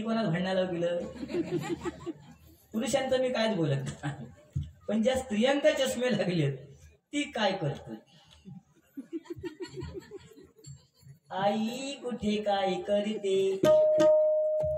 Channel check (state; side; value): identical; both; correlation 1.00